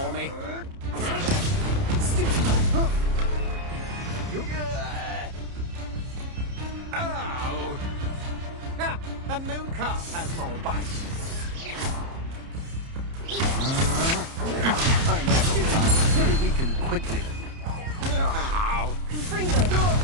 me. Oh! Ah, a moon calf has more bite. I know sometimes very weak and quickly. Ow!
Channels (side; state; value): left; late; 30 ms